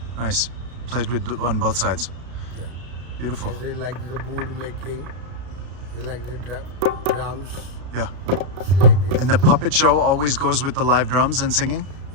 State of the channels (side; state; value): left; late; 33 ms